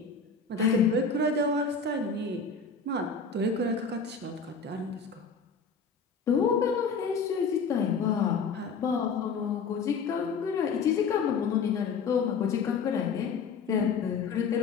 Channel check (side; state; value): right; quieter; 5.0 dB